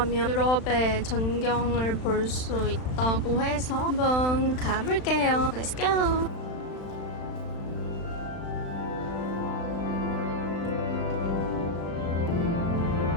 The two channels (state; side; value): late; right; 35 ms